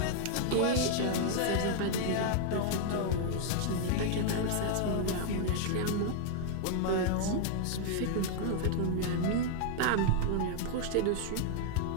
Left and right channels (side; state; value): both; different; correlation 0.00